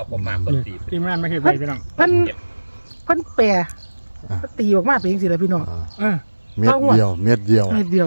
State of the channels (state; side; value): inverted; both; correlation -1.00